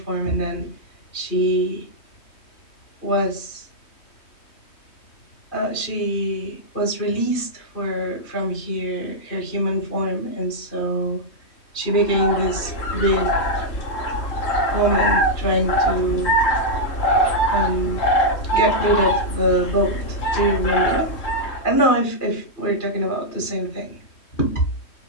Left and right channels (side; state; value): right; late; 3.2 ms